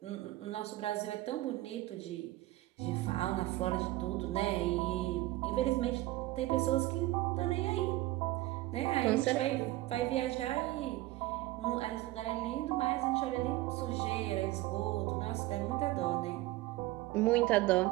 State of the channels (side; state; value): left; quieter; 17.7 dB